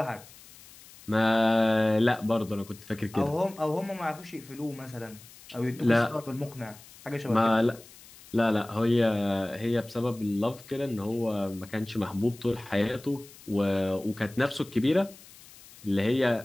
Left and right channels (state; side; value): noise; left; hiss, 21 dB below the sound